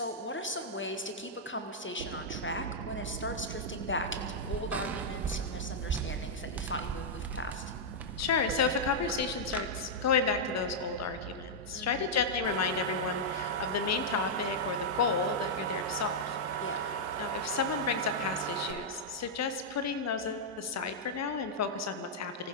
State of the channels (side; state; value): both; normal; correlation -0.07